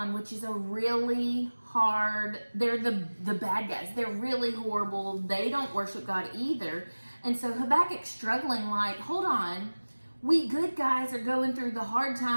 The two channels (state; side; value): inverted; both; correlation -1.00